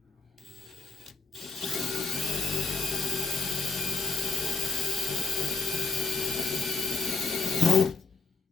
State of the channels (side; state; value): right; quieter; 4.6 dB